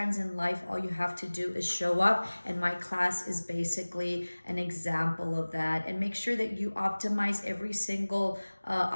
in life, all you have to do is show up, and my class is basically an example of that. And make sure that you optimize every single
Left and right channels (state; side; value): inverted; both; correlation -1.00